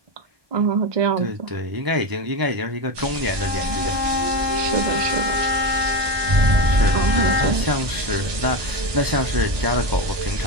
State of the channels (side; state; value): left; late; 1.2 ms